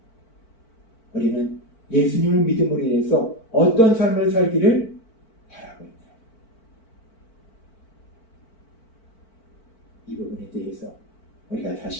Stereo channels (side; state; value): right; late; 4.5 ms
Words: 우리는 예수님을 믿음으로 인해서 어떤 삶을 살기를 바라고 있나요? 이 부분에 대해서 우리가